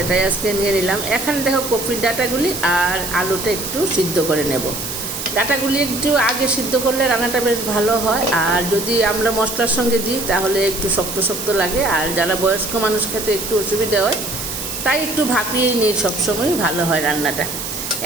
আজকে নিয়ে নিলাম। এখানে দেখো কপির ডাঁটাগুলি আর আলুটা একটু সিদ্ধ করে নেব। ডাঁটাগুলি একটু আগে সিদ্ধ করলে রান্নাটা বেশ ভালো হয়, আর যদি আমরা মশলার সঙ্গে দিই তাহলে একটু শক্ত শক্ত লাগে, আর যারা বয়স্ক মানুষ খেতে একটু অসুবিধা হয়, তাই একটু ভাপিয়েই নিই, সবসময়ই ভালো হয় রান্নাটা।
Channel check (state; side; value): noise; right; hiss, 6 dB below the sound